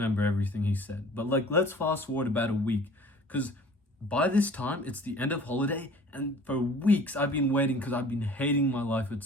everything he said, but like, let's fast forward about a week, because by this time it's the end of holiday, and for weeks I've been waiting because I've been hating my life at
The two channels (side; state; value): both; normal; correlation 0.48